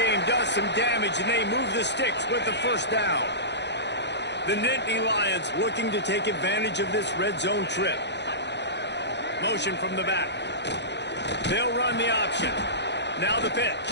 does some damage, and they move the sticks with the 1st down. The Nittany Lions looking to take advantage of this red zone trip. Motion from the back. They'll run the option. Now the pitch.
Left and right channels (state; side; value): late; right; 0.50 ms